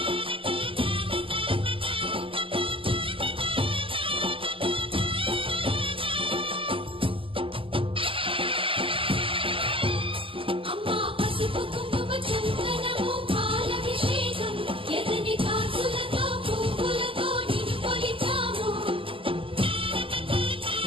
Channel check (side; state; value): left; late; 0.25 ms